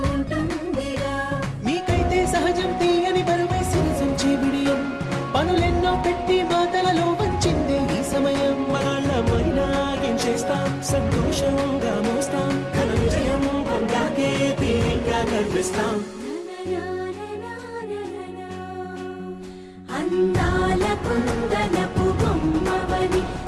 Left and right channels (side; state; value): both; identical; correlation 1.00